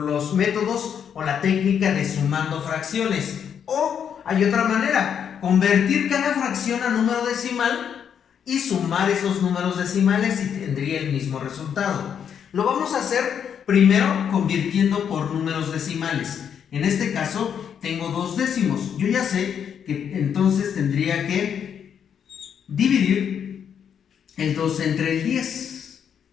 métodos o la técnica de sumando fracciones. O hay otra manera, convertir cada fracción a número decimal y sumar esos números decimales y tendría el mismo resultado. Lo vamos a hacer primero convirtiendo por números decimales. En este caso tengo 2 décimos. Yo ya sé que entonces tendría que dividir el 2 entre el 10,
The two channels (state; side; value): quieter; right; 8.1 dB